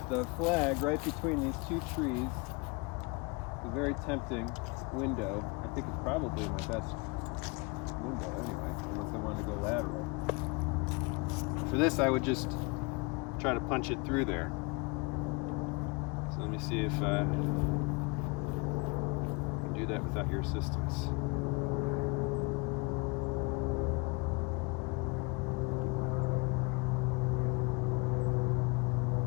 the flag right between these two trees. It's a very tempting window. I think it's probably my best window anyway, unless I wanted to go lateral. For this, I would just try to punch it through there. So let me see if I can do that without your assistance.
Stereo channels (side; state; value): right; quieter; 28.4 dB